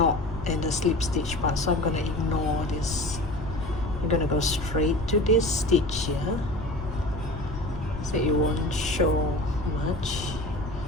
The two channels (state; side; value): noise; left; rumble, 9 dB below the sound